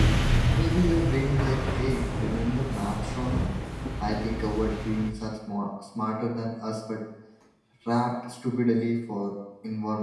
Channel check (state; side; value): identical; both; correlation 1.00